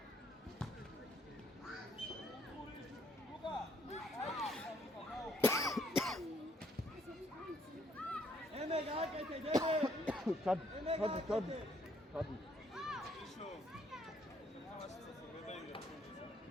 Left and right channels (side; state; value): both; normal; correlation 0.67